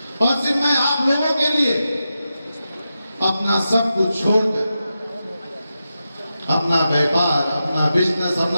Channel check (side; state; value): both; inverted; correlation -0.89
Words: और सिर्फ मैं आप लोगों के लिए अपना सब कुछ छोड़कर, अपना व्यापार, अपना बिजनेस,